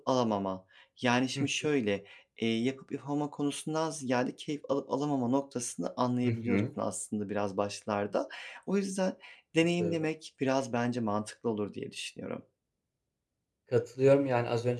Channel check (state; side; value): identical; both; correlation 1.00